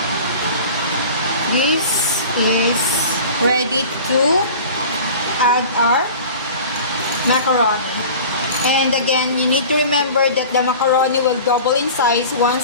this is ready to add our macaroni. And again, you need to remember that the macaroni will double in size once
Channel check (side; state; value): both; inverted; correlation -0.40